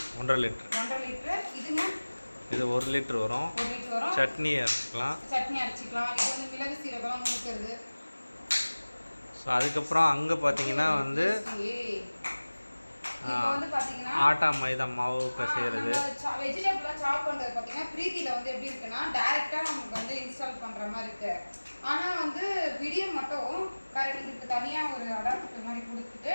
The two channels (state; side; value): inverted; both; correlation -1.00